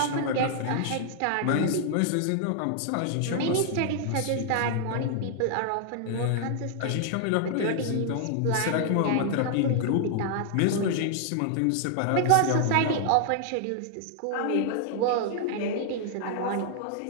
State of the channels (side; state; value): both; different; correlation 0.00